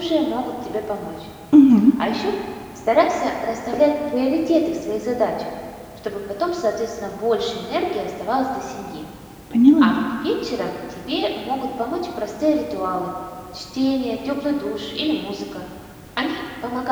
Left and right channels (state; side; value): identical; both; correlation 1.00